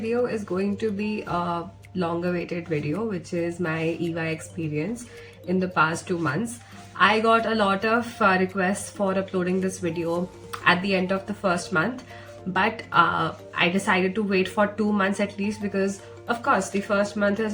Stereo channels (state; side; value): identical; both; correlation 1.00